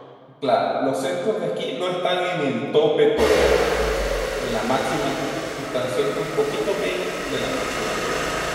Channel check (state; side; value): identical; both; correlation 1.00